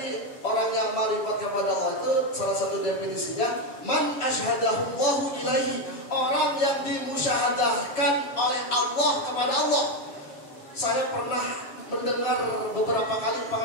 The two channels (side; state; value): right; late; 7.1 ms